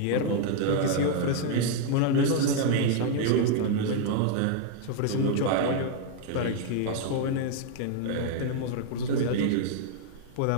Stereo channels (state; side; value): different; both; correlation 0.00